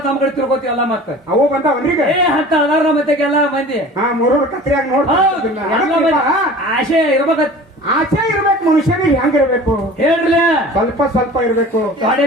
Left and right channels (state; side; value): normal; both; correlation 0.42